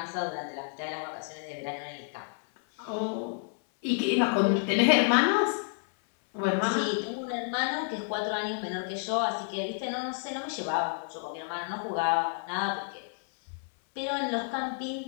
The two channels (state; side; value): silent; right; 58 dB below the other